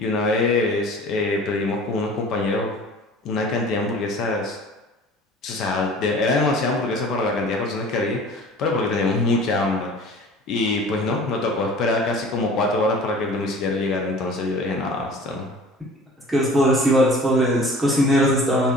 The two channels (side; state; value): both; normal; correlation 0.45